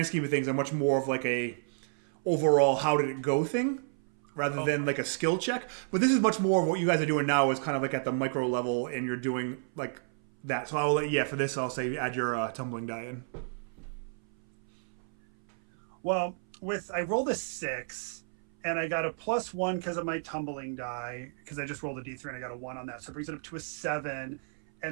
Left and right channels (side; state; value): left; silent; 57 dB below the other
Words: scheme of things are much more of like a overall how did it go thing rather than like a skill check. But this is much more of what you guys are doing now is kind of like at the micro level, and you're doing like that. So for this I'll say add your tumbling die in. Well, I rolled a 6, and I got a +1 because of my tumbling die, because I just rolled a d3 and I got a 1 on that, so it brings it up to a 7.